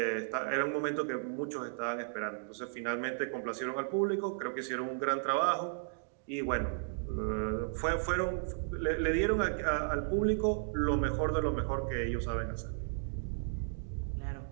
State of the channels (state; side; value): silent; left; digital silence